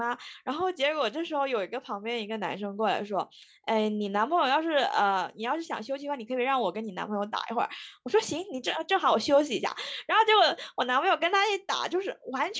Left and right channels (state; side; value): identical; both; correlation 1.00